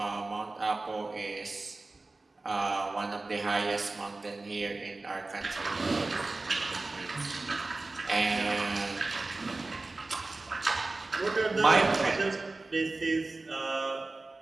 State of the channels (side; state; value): left; quieter; 3.3 dB